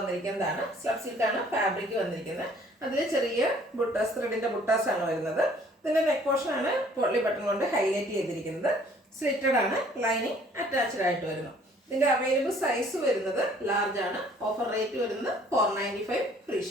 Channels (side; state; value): both; normal; correlation 0.57